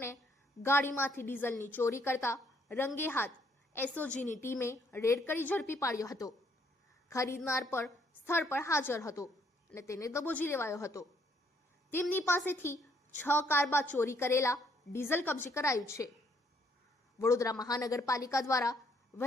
ગાડીમાંથી ડીઝલની ચોરી કરતા રંગે હાથ એસઓજીની ટીમે રેડ કરી ઝડપી પાડ્યો હતો। ખરીદનાર પણ સ્થળ પર હાજર હતો અને તેને દબોચી લેવાયો હતો। તેમની પાસેથી 6 કારબા ચોરી કરેલા ડીઝલ કબજે કરાયું છે। વડોદરા મહાનગરપાલિકા દ્વારા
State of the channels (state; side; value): normal; both; correlation 0.68